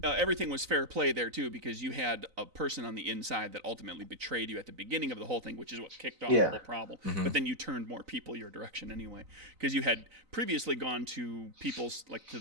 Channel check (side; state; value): left; late; 3.9 ms